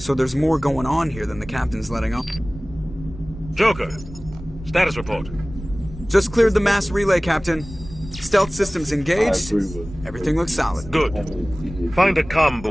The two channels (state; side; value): normal; both; correlation 0.98